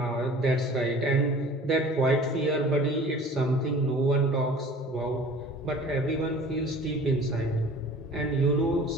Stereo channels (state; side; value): normal; both; correlation 0.45